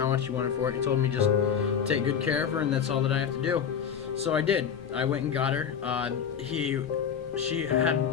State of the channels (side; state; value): right; quieter; 7.7 dB